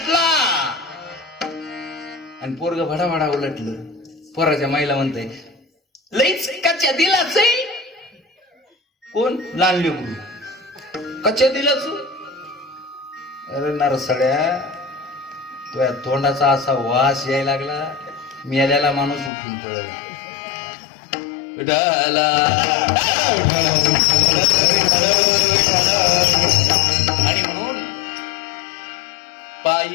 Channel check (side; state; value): right; drops out; at 19.3 s